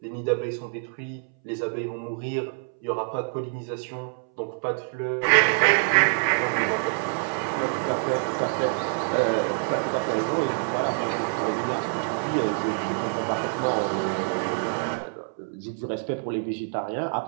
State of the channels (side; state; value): left; silent; 61 dB below the other